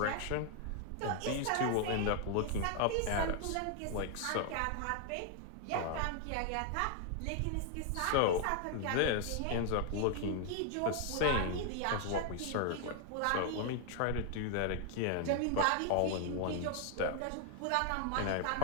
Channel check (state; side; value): different; both; correlation 0.00